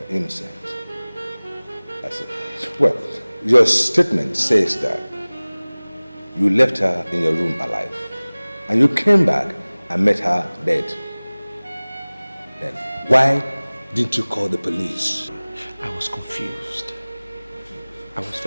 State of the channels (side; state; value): both; inverted; correlation -1.00